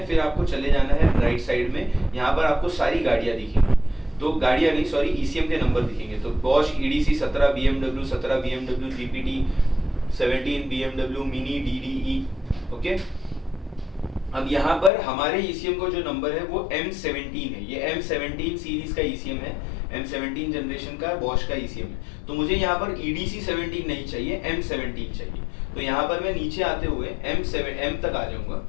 फिर आपको चले जाना है राइट साइड में। यहाँ पर आपको सारी गाड़ियां दिखेंगी। तो गाड़ियां नहीं, सॉरी, ECM के नंबर दिखेंगे। तो Bosch EDC 17, BMW 17, BMW GPT 17, BMW mini DDE। Okay, अब यहाँ पर हमारे ECM का जो नंबर है वो M17 है। ये M17 सीरीज का ECM है, M17 जनरेशन का Bosch का ECM है। तो मुझे यहाँ पर EDC 17 नहीं चाहिए, M17 चाहिए। तो यहाँ पर मैं नीचे आते हुए M तक आ जाऊंगा।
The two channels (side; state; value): right; drops out; at 14.9 s